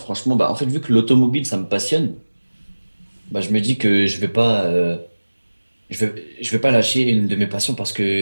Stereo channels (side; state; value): both; inverted; correlation -1.00